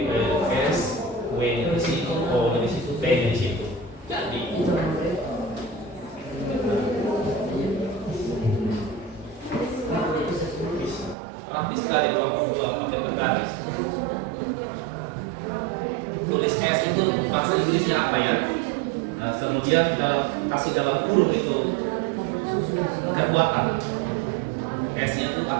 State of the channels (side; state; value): left; drops out; at 11.2 s